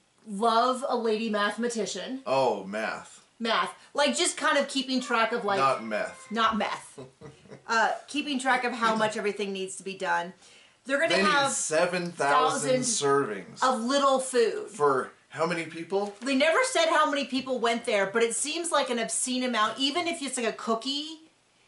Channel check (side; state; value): both; identical; correlation 1.00